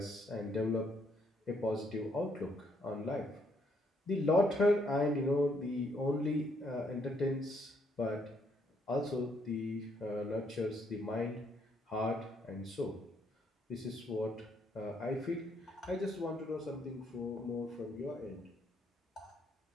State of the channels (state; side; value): normal; both; correlation 0.71